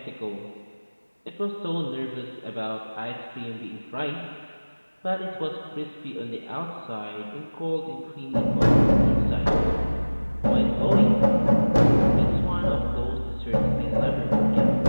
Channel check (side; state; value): both; inverted; correlation -1.00